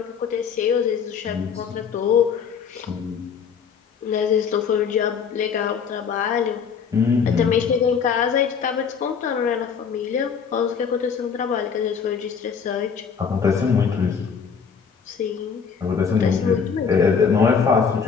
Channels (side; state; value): right; quieter; 6.5 dB